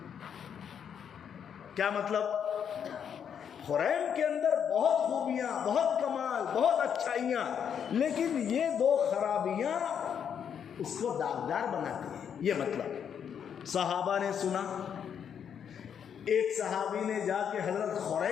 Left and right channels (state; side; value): quieter; right; 8.0 dB